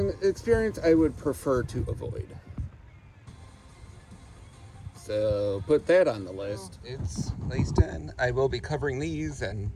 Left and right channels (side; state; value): both; identical; correlation 1.00